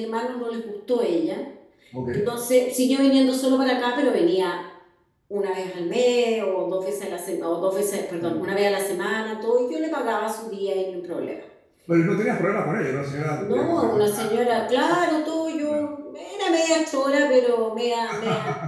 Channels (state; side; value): identical; both; correlation 1.00